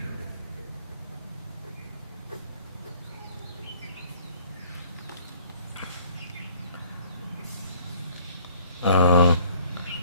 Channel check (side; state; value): both; inverted; correlation -0.57